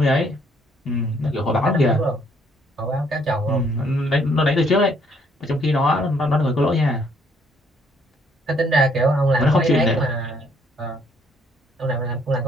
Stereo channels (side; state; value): both; normal; correlation 0.66